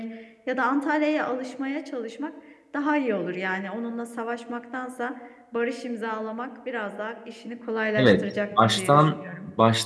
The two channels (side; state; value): both; identical; correlation 1.00